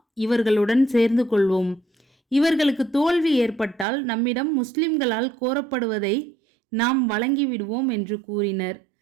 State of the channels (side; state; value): left; drops out; at 3.9 s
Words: இவர்களுடன் சேர்ந்து கொள்வோம். இவர்களுக்கு தோல்வி ஏற்பட்டால் நம்மிடம் முஸ்லிம்களால் கோரப்படுவதை நாம் வழங்கிவிடுவோம் என்று கூறினர்.